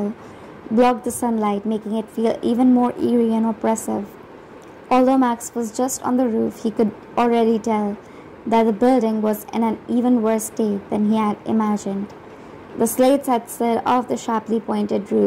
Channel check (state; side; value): identical; both; correlation 1.00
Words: blocked the sunlight, making it feel even more eerie and oppressive. Although Max was just on the roof, he could already tell that the building was in an even worse state than he had imagined. The slates had slid off the sharply pointed